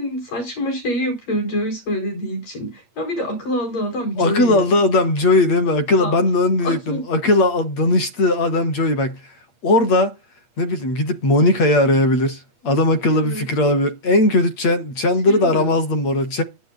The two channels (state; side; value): late; right; 8.4 ms